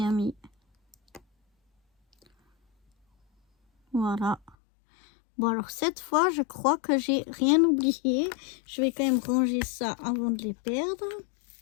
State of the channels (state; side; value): drops out; right; at 4.5 s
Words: mis. Voilà. Bon, alors cette fois, je crois que j'ai rien oublié. Je vais quand même ranger ça avant de les perdre.